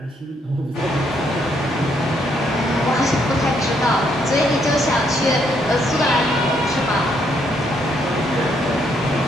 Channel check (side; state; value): both; normal; correlation 0.73